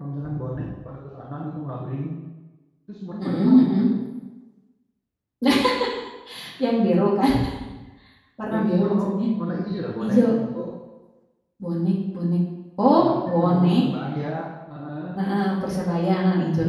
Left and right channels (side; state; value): both; identical; correlation 1.00